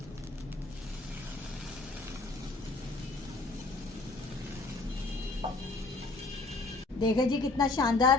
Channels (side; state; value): right; quieter; 3.4 dB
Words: देखें जी कितना